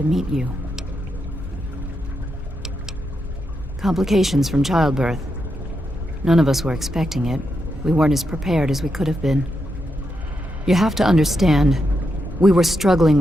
meet you. Complications from childbirth. None of us were expecting it. We weren't as prepared as we could have been. You have to understand, we were struggling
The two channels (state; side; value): normal; both; correlation 0.84